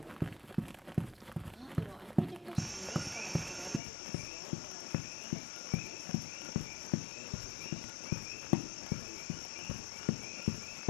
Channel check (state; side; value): drops out; right; at 3.8 s